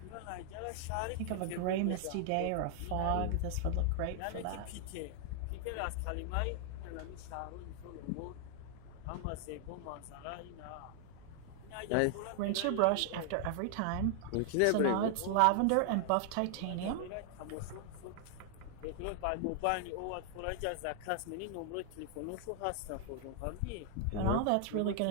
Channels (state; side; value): different; both; correlation 0.00